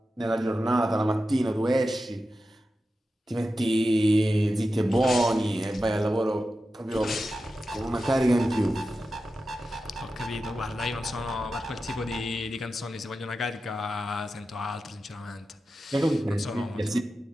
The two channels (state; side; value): normal; both; correlation 0.92